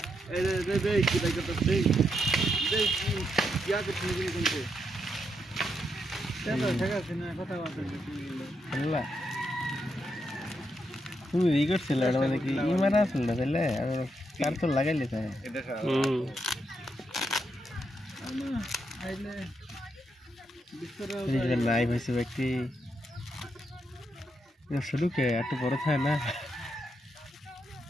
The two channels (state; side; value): normal; both; correlation 0.81